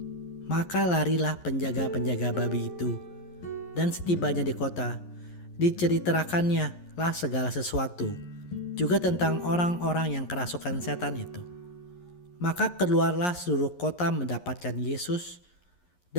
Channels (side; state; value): right; late; 11 ms